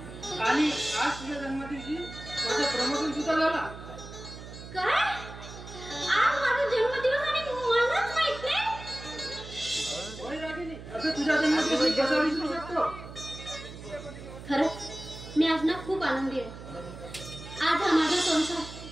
आणि आज तुझ्या जन्मदिवशी माझं प्रमोशन सुद्धा झाला. काय? आज माझा जन्मदिवस आणि मलाच माहित नाही? होय रागिनी, असं तुझ्या जन्मदिवशी कसा विसरू शकतो. खरंच मी आज ना खूप आनंदी आहे. आज हा माझा संसार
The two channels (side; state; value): right; noise; hum, 13 dB below the sound